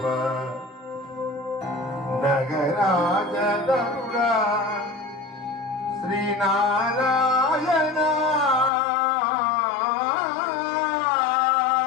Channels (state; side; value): drops out; right; at 8.7 s